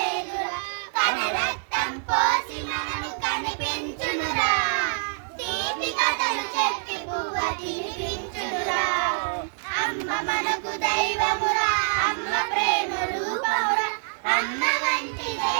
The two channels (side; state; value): left; silent; 60 dB below the other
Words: కనరక్తం పోసి మనము కనిపించునురా, తీపి కథలు చెప్పి పువ్వ తినిపించునురా. అమ్మ మనకు దైవమురా, అమ్మ ప్రేమ రూపమురా, అమ్మ వంటి